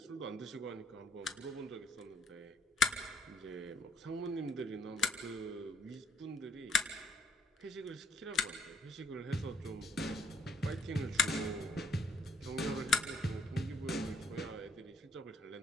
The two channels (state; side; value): normal; both; correlation 0.66